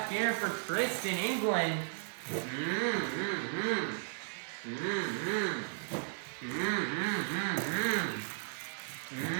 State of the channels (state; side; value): silent; left; 54 dB below the other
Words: here for Tristan, England.